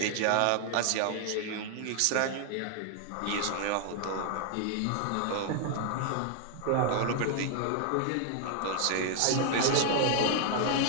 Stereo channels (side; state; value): both; different; correlation 0.00